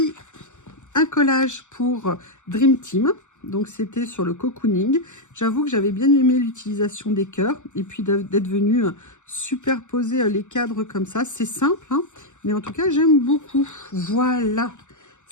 un collage pour Dream Team. Donc, c'était sur le cocooning. J'avoue que j'avais bien aimé l'utilisation des cœurs et puis d'être venu superposer les cadres comme ça. C'est simple, hein, mais en tout cas, j'aime beaucoup. Voilà,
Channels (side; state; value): right; late; 0.84 ms